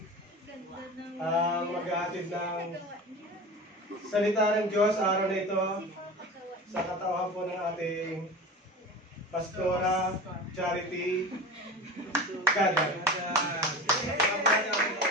ang maghahatid ng salita ng Diyos araw na ito sa katauhan po ng ating Pastora Charity Gaga.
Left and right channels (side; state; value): both; normal; correlation 0.32